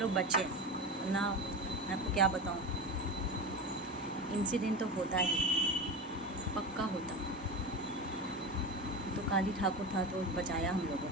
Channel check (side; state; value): both; normal; correlation 0.24